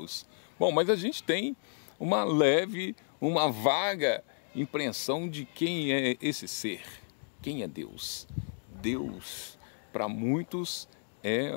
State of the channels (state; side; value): silent; right; digital silence